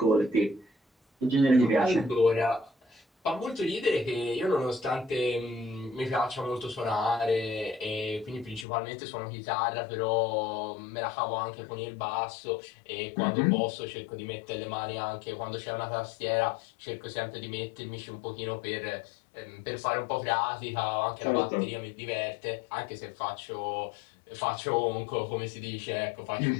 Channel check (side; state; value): right; drops out; at 8.7 s